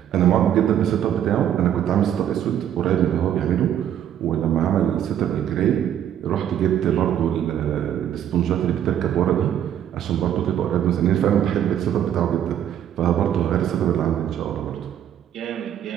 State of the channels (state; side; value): quieter; left; 10.3 dB